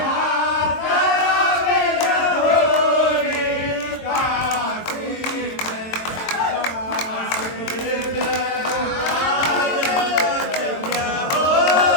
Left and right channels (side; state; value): right; late; 22 ms